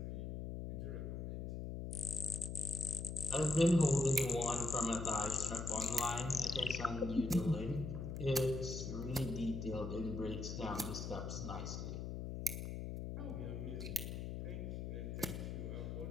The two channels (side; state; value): left; noise; hum, 5 dB below the sound